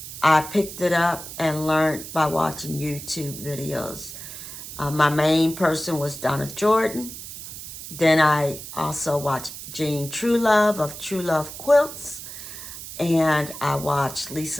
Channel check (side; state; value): right; noise; hiss, 11 dB below the sound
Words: I picked it up and learned by watching YouTube videos. My main person was Donna Jordan, Then I also watch Jean Truelove of True Love Quilts. And I watch